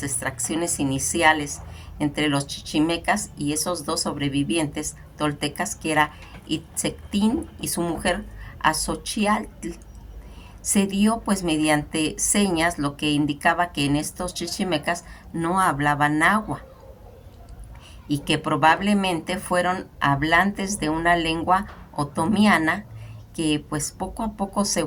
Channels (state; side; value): identical; both; correlation 1.00